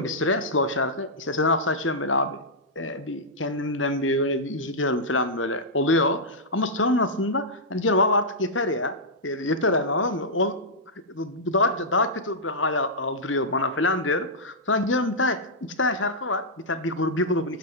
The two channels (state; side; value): normal; both; correlation -0.11